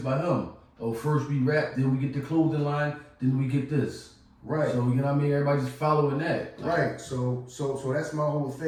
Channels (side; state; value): both; identical; correlation 1.00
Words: him. Oh, first we rap, then we get the clothing line, then we get this. Right. So, you know what I mean? Everybody just following that. Right. So that's my whole